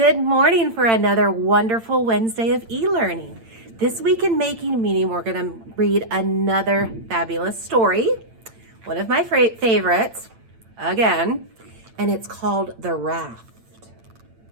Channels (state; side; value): late; left; 8.9 ms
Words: morning for another wonderful Wednesday of e-learning. This week in Making Meaning, we're going to read another fabulous story, one of my favorites, again, and it's called The Raft.